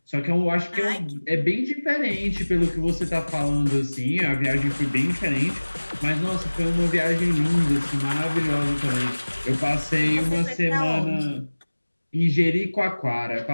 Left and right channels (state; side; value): inverted; both; correlation -1.00